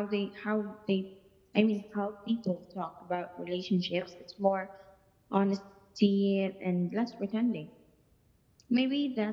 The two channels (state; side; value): identical; both; correlation 1.00